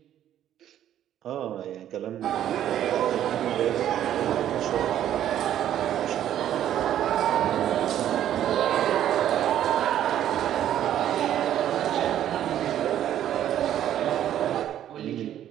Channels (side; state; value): left; quieter; 11.2 dB